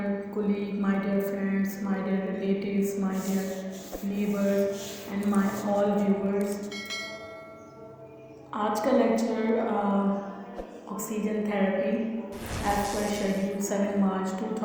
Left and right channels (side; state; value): both; identical; correlation 1.00